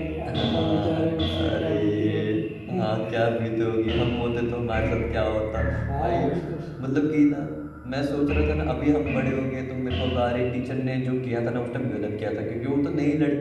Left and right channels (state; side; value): identical; both; correlation 1.00